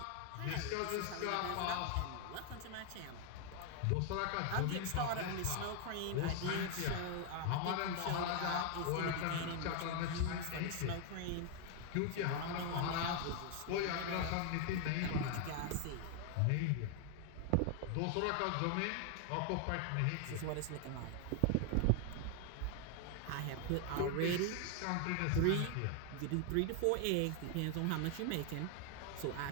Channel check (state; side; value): different; both; correlation 0.01